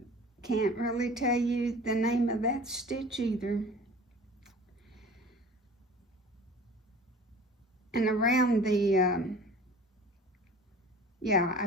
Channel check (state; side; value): normal; both; correlation 0.43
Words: Can't really tell you the name of that stitch either. And around the, I